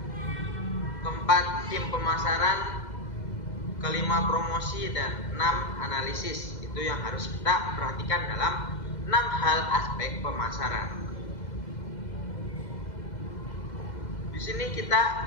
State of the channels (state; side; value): late; right; 2.0 ms